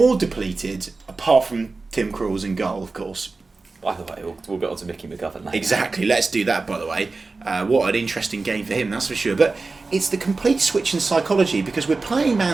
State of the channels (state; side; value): quieter; left; 3.8 dB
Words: depleted, apart from Tim Krul's in goal, of course. By the way, we'll get on to Mickey McGovern later. Exactly, let's do that, by the way. What an interesting game for him, that's for sure. But it's the complete switch in psychology, because we're playing